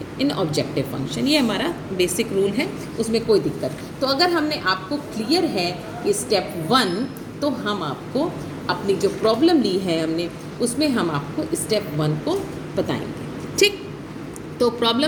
इन ऑब्जेक्टिव फंक्शन। ये हमारा बेसिक रूल है, उसमें कोई दिक्कत। तो अगर हमने आपको क्लियर है कि स्टेप वन, तो हम आपको अपनी जो प्रॉब्लम ली है हमने उसमें हम आपको स्टेप वन को बताएंगे। ठीक, तो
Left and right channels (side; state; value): both; identical; correlation 1.00